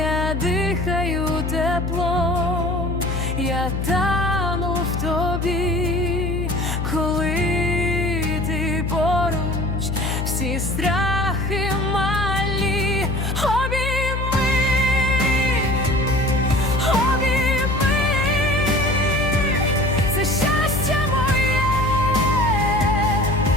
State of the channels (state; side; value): noise; left; hum, 2 dB below the sound